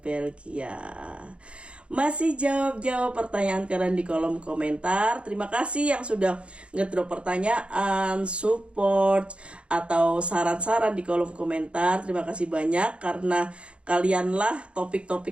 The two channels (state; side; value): late; left; 0.059 ms